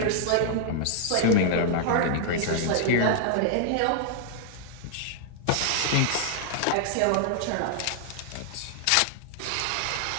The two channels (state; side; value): different; both; correlation -0.01